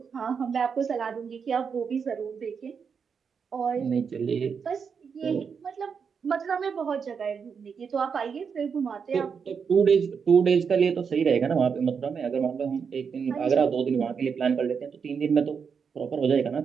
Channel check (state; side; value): quieter; left; 6.3 dB